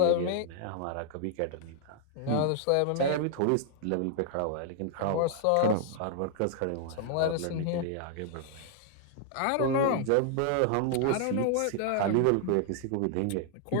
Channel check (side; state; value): both; different; correlation 0.00